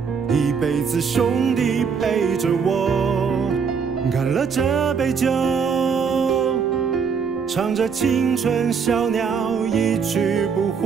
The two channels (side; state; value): left; quieter; 6.1 dB